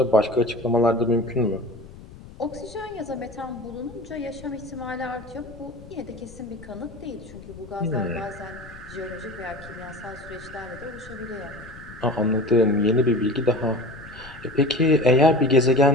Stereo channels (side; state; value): left; noise; rumble, 17 dB below the sound